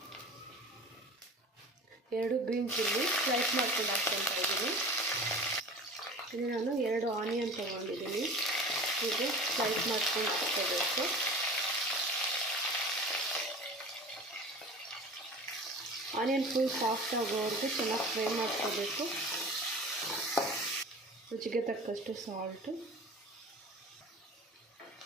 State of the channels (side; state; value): both; normal; correlation 0.38